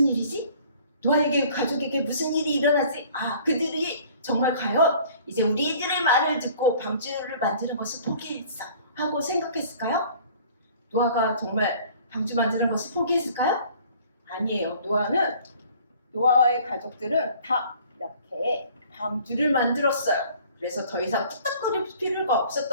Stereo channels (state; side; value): inverted; both; correlation -0.51